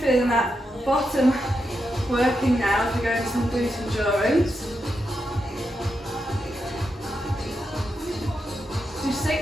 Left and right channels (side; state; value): both; normal; correlation 0.86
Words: that bottom working now as we go into some glute endurance. Do